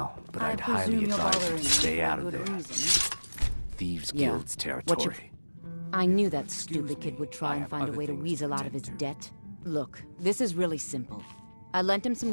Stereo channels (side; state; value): both; inverted; correlation -1.00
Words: but I'd highly advise you to stay out of there. Thieves' Guild's territory. I knew that stupid kid would try and find a way to weasel out of his debt. Look, this is really simple. I lent him some